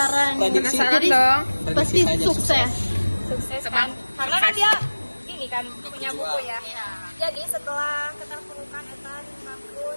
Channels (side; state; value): both; inverted; correlation -1.00